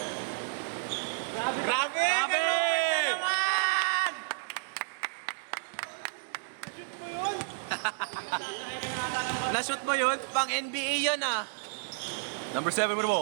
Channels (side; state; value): left; silent; digital silence